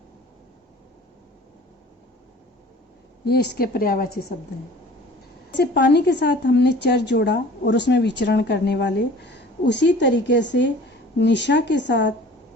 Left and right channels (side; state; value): both; normal; correlation 0.46